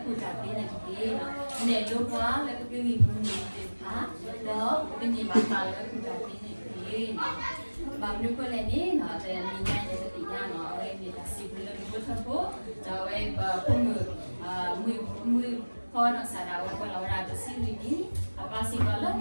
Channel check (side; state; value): both; inverted; correlation -1.00